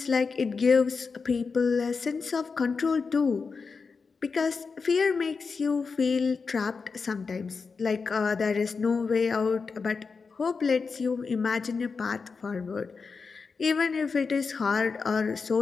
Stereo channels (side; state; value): right; quieter; 4.9 dB